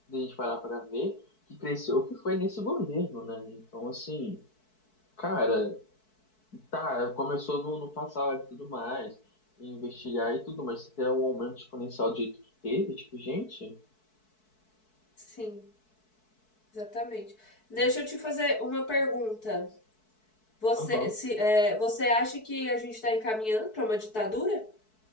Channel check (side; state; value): right; late; 4.6 ms